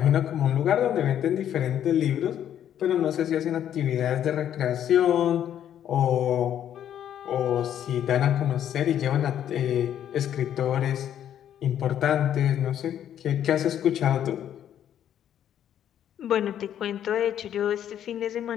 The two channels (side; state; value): right; quieter; 10.2 dB